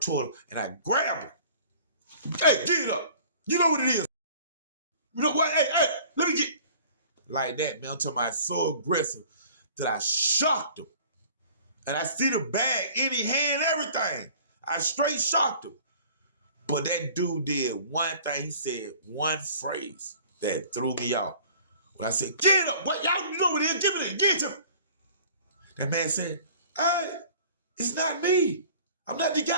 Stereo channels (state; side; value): inverted; both; correlation -0.48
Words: him and I grab him. Hey, get it up. You know what it is. You know what? Hey, let me get. Like that, man, until my so aggressive that I shocked him. And I see the bag in his hand, everything. I straight shocked him. But that dude did one thing. He said one phrase that threw me off. When I said, get up. What? Y'all know what it is. Give me that. Get it to me. That man said, hey, it's not me. I'm not the